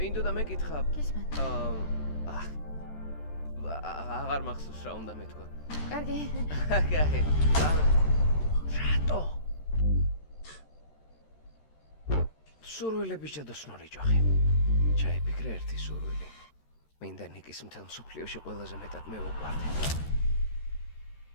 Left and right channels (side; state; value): right; late; 13 ms